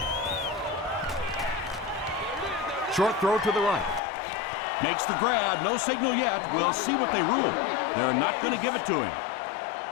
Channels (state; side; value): drops out; right; at 4.0 s